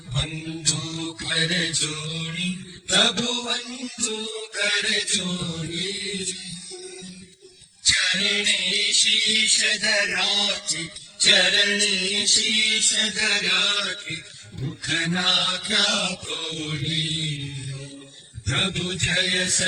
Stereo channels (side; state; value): both; identical; correlation 1.00